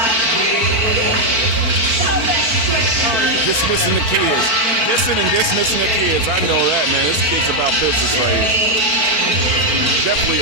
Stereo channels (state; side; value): late; left; 4.5 ms